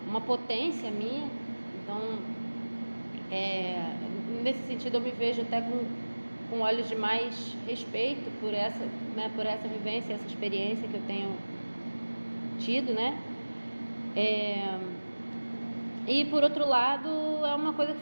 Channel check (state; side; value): inverted; both; correlation -1.00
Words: uma potência minha. Então, nesse sentido, eu me vejo até com olhos de mais respeito por essa vivência, essa experiência que eu tenho tido, né? E por outro lado, é uma coisa que